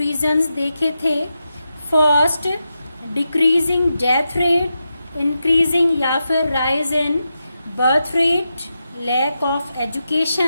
देखे थे। First, decreasing death rate, increasing या फिर rise in birth rate, lack of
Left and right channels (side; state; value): both; inverted; correlation -0.88